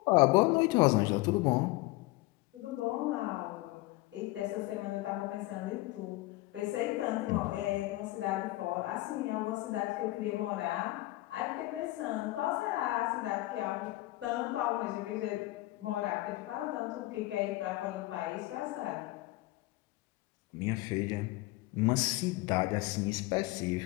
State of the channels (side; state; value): right; quieter; 19.4 dB